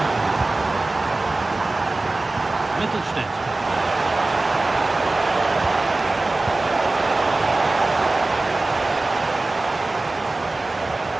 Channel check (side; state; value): left; quieter; 3.1 dB